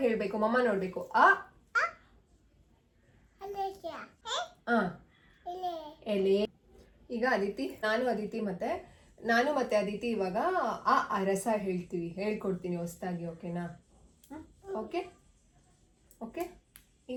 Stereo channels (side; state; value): both; identical; correlation 1.00